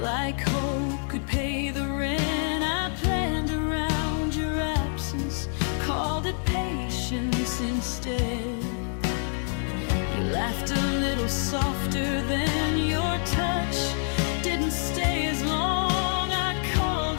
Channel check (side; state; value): right; silent; 60 dB below the other